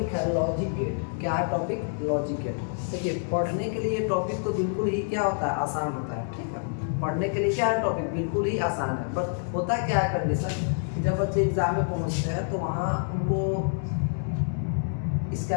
है लॉजिक गेट। क्या है टॉपिक? Logic gate. देखिए, पढ़ने के लिए टॉपिक तो बिल्कुल ही क्या होता है, आसान होता है। ठीक है, पढ़ने के लिए क्या है टॉपिक, बिल्कुल ही आसान है। बट होता क्या है कंडीशन, जब बच्चे एग्जाम में पहुंचते हैं तो वहाँ उनको इसका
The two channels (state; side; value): silent; right; digital silence